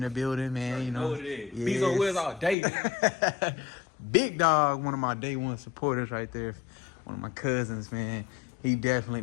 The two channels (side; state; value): right; drops out; at 2.6 s